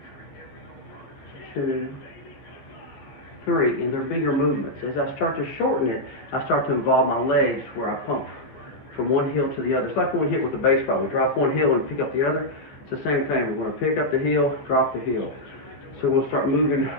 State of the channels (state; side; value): late; right; 14 ms